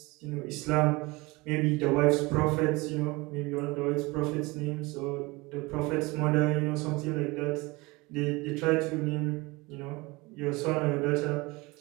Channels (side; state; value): left; quieter; 23.8 dB